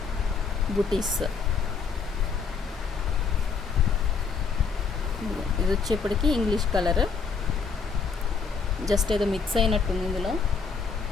బుటీస్. ఇది వచ్చేప్పటికి ఇంగ్లీష్ కలర్, జస్ట్ ఏదో మిక్స్ అయినట్టుంది ఇందులో.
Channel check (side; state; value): right; quieter; 5.4 dB